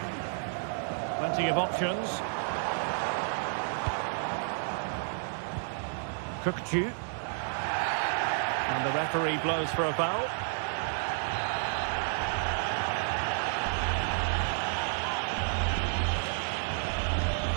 Plenty of options. Kukcu. And the referee blows for a foul.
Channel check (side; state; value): left; silent; digital silence